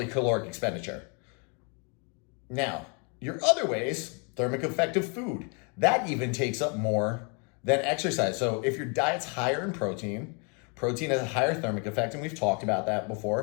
caloric expenditure. Now, your other ways, thermic effect of food, that even takes up more than exercise. So if your diet's higher in protein has a higher thermic effect, and we've talked about that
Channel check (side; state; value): right; quieter; 35.7 dB